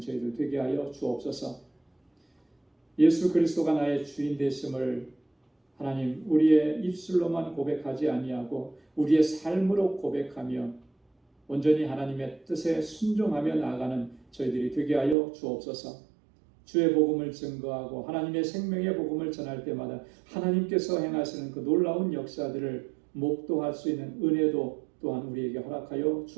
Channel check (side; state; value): left; drops out; at 15.2 s